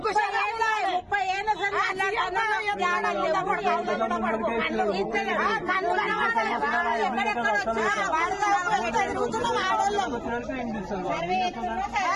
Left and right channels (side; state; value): both; identical; correlation 1.00